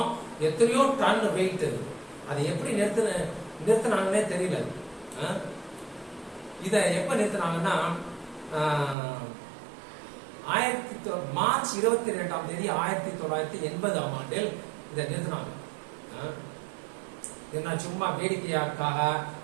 எத்தனையோ டன் வெயிட். அதை எப்படி நிறுத்தினாங்கன்னே தெரியல. இத எப்ப நிறுத்தினாங்கன்னா மார்ச் 22ஆம் தேதி 1980ஆம் ஆண்டில் இதை நிறுத்தினாங்க. என்ன சும்மா வேடிக்கையாக்காக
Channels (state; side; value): drops out; left; at 9.0 s